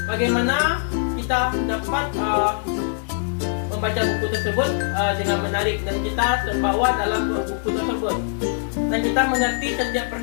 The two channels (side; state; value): right; silent; 64 dB below the other